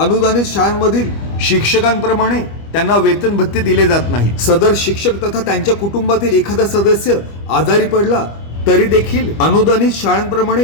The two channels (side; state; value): right; late; 25 ms